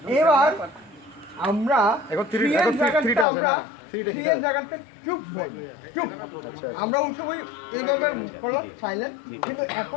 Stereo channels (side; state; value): right; drops out; at 3.2 s